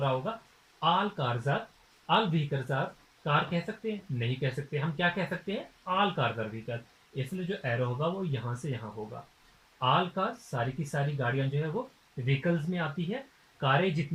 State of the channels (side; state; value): both; identical; correlation 1.00